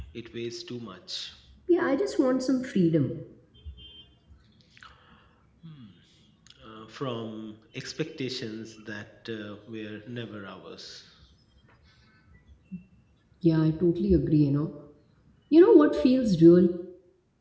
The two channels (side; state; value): both; identical; correlation 1.00